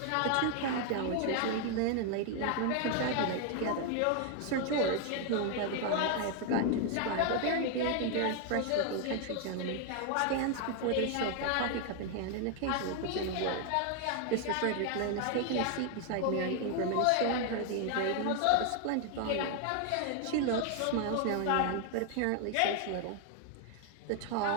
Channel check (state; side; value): different; both; correlation 0.00